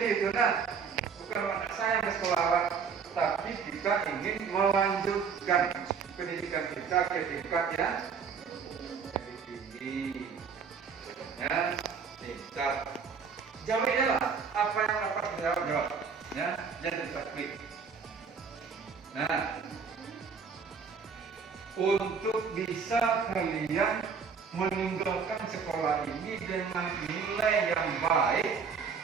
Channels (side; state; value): left; quieter; 6.0 dB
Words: itu nah, bukan tidak sayang di sekolah, tapi kita ingin melanjutkan pendidikan kita ke tingkat yang lebih tinggi. Ya, tingkat. Jawabnya lah apa yang dapat dijawab. Ya, jadi taktik. Nah, untuk bisa kalian meninggalkan sekolah ini dengan nilai yang baik,